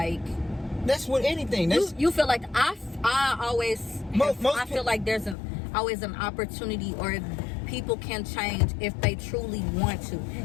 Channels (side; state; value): right; drops out; at 5.4 s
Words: that's with anything. You feel like I always I feel like there's always an opportunity, or people can change if they truly want to.